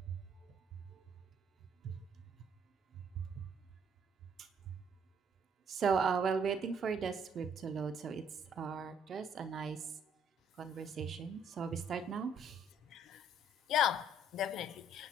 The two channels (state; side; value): normal; both; correlation 0.63